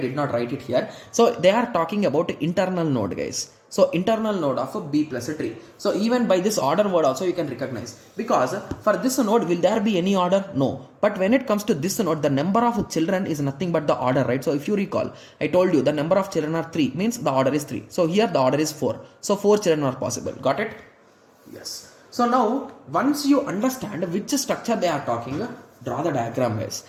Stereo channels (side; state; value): both; identical; correlation 1.00